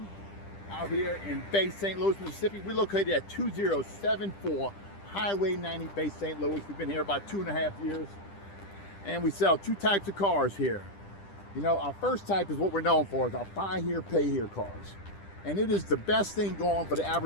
out here in Bay St. Louis, Mississippi. We're located at 2074 Highway 90, Bay St. Louis. We've been here about 2.5 years, and we sell two types of cars here. You know, our first type is what we're known for, is our buy here, pay here cars. And it is the best thing going for the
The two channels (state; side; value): late; right; 10 ms